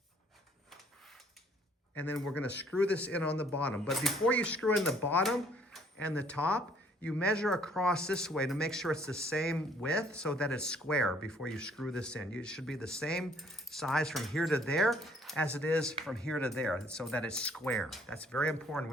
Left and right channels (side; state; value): both; normal; correlation 0.61